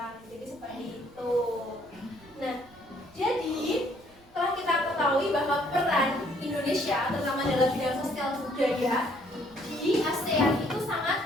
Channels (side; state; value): right; noise; rumble, 27 dB below the sound